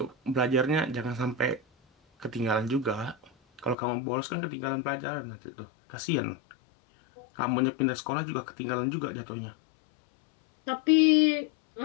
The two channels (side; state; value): right; drops out; at 3.8 s